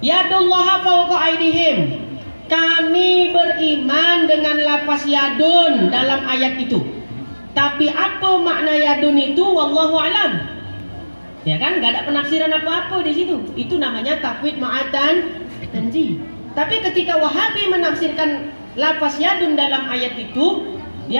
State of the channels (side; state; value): both; inverted; correlation -1.00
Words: fawqa aydihim. Kami beriman dengan lafaz yadun dalam ayat itu. Tapi apa makna yadun itu wallahu alam. Ya kan, enggak ada penafsiran apa-apa di situ. Itu namanya tafwid ma'atan tanzih. Tapi ketika Wahabi menafsirkan lafaz yadun dalam ayat itu,